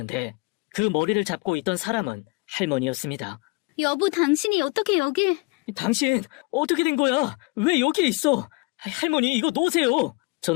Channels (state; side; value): quieter; right; 27.6 dB